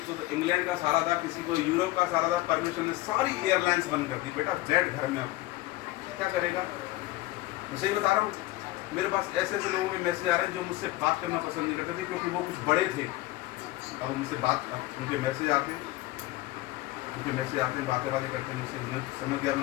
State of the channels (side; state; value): right; quieter; 18.3 dB